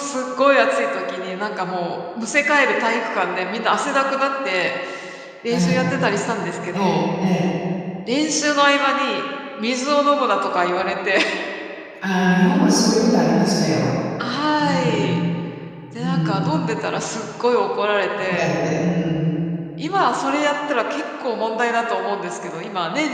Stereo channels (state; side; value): identical; both; correlation 1.00